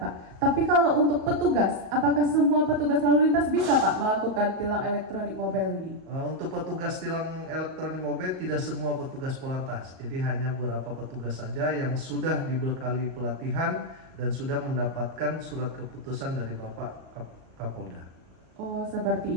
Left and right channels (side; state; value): left; late; 38 ms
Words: Pak, tapi kalau untuk petugas, apakah semua petugas lalu lintas bisa Pak melakukan tilang elektronik mobile ini? Untuk petugas tilang elektronik mobile tidak semua petugas Polantas, jadi hanya beberapa petugas saja yang sudah dibekali pelatihan dan sudah mendapatkan surat keputusan dari Bapak Kapolda. Oh